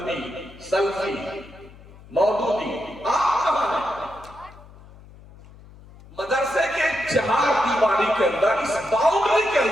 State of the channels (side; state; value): left; noise; hum, 21 dB below the sound